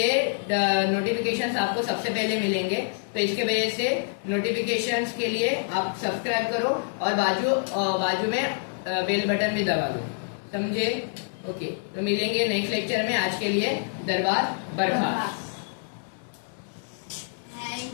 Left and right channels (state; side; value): silent; right; 60 dB below the other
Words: नोटिफिकेशंस आपको सबसे पहले मिलेंगे। तो इसके वजह से नोटिफिकेशंस के लिए आप सब्सक्राइब करो, और बाजू में बेल बटन भी दबा दो, समझे। ओके, तो मिलेंगे नेक्स्ट लेक्चर में। आज के लिए दरबार बरखास्त।